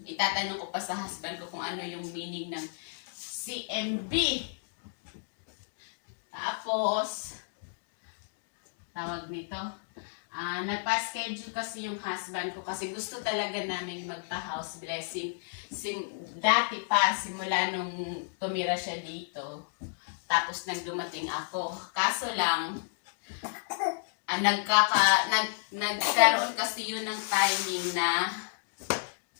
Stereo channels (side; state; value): right; silent; digital silence